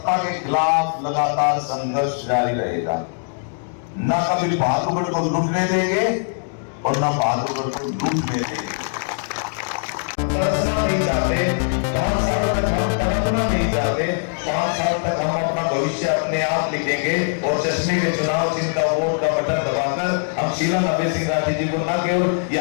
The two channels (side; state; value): right; silent; digital silence